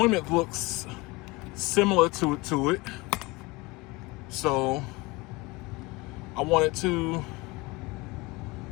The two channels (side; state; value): right; quieter; 23.8 dB